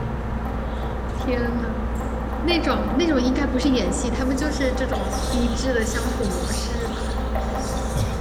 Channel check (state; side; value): identical; both; correlation 1.00